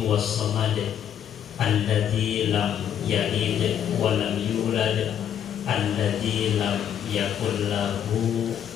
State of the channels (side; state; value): right; quieter; 9.4 dB